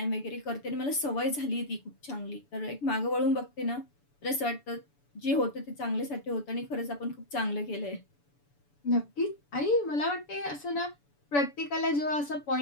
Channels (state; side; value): late; right; 7.0 ms